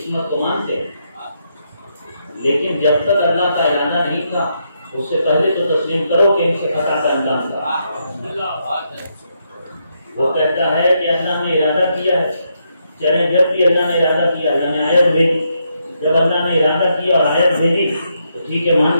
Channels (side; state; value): both; inverted; correlation -0.79